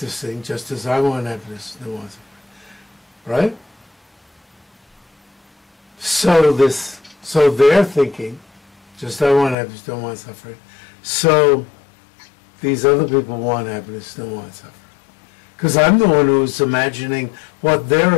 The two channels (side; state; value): right; drops out; at 9.6 s